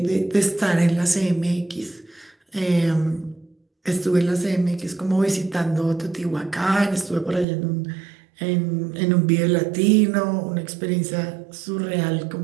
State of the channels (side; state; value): left; drops out; at 7.5 s